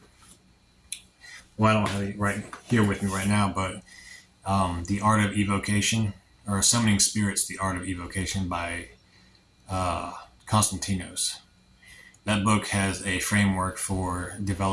I don't have it right here with me right now, but The Art of Evocation, or Summoning Spirits, The Art of Evocation by Constantinos. That book has a framework for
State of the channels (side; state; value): both; identical; correlation 1.00